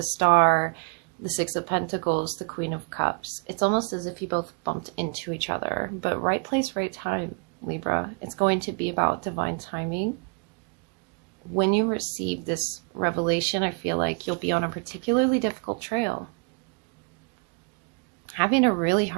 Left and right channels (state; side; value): quieter; left; 34.7 dB